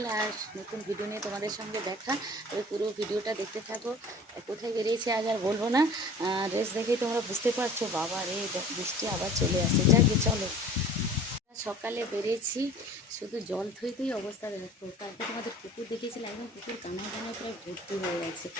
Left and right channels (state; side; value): normal; both; correlation 0.45